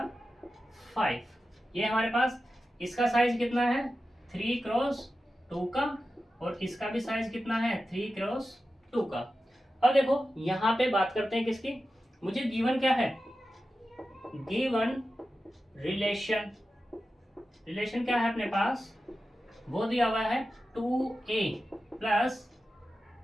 5। ये हमारे पास इसका साइज कितना है 3x2 का, और इसका भी साइज कितना है 3x2 का। अब देखो यहाँ पे बात करते हैं किसकी, मुझे गिवन क्या है, गिवन रिलेशन, रिलेशन क्या है अपने पास, वो दिया हुआ है 2a प्लस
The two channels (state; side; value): normal; both; correlation 0.92